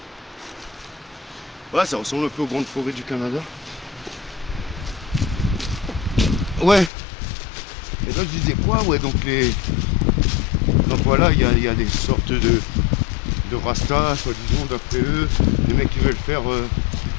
Ouais, ça ressemble un peu aux grandes forêts du Canada. Ouais. Et là je disais quoi? Ouais, donc voilà, il y a des sortes de rastas, soi-disant, d'après eux. Les mecs qui veulent faire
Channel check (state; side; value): drops out; right; at 6.9 s